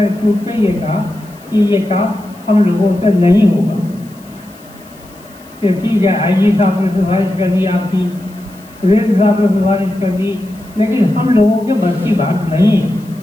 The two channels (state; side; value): noise; left; hiss, 26 dB below the sound